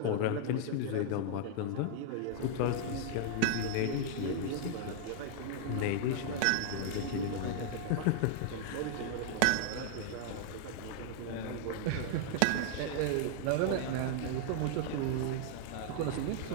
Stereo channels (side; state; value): both; different; correlation -0.01